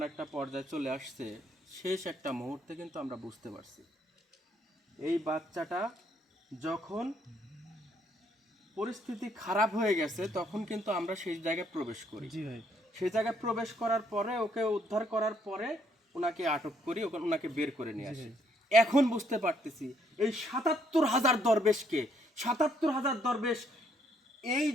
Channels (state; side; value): normal; both; correlation 0.69